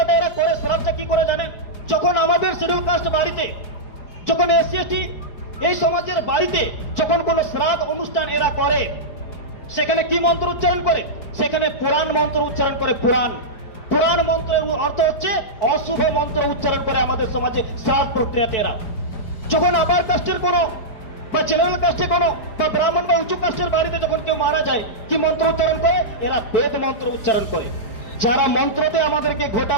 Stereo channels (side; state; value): right; late; 4.9 ms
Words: এরা করে, শ্রাদ্ধটা কি করে জানে? যখন আমাদের শিডিউল কাস্ট বাড়িতে, যখন এসসি এসটি এই সমাজের বাড়িতে যখন কোনো শ্রাদ্ধ অনুষ্ঠান এরা করে, সেখানে কি মন্ত্র উচ্চারণ করে? সেখানে পুরাণ মন্ত্র উচ্চারণ করে। পুরাণ মন্ত্রের অর্থ হচ্ছে অশুভ মন্ত্র উচ্চারণ করে আমাদের সমাজে শ্রাদ্ধ প্রক্রিয়াতে এরা। যখন আবার কাস্টের কোনো বা জেনারেল কাস্টে কোনো বা ব্রাহ্মণ বা উঁচু কাস্টের বাড়িতে যখন কেউ মারা যায়, কি মন্ত্র উচ্চারণ করে? এরা বেদ মন্ত্র উচ্চারণ করে। যারা মন্ত্রতে আমাদেরকে